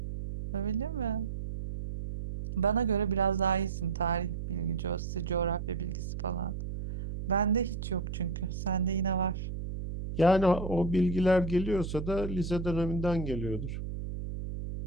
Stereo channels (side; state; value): right; noise; hum, 6 dB below the sound